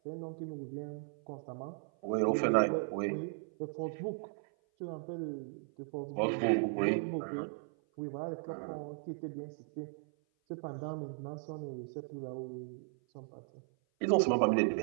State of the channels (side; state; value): left; silent; 53 dB below the other